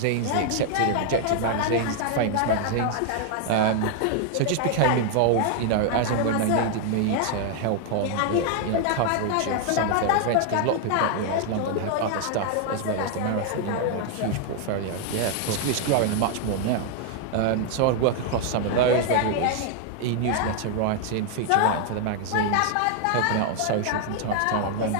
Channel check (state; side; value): different; both; correlation 0.00